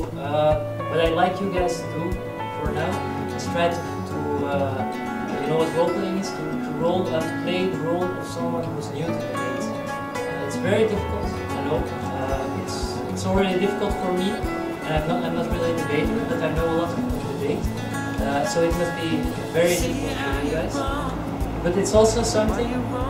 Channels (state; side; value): identical; both; correlation 1.00